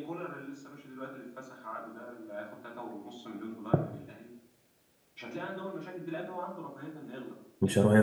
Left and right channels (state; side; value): identical; both; correlation 1.00